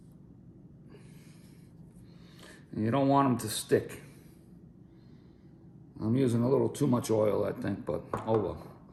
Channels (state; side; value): identical; both; correlation 1.00